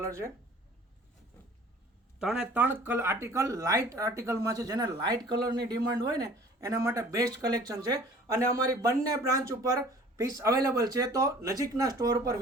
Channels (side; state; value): both; normal; correlation 0.49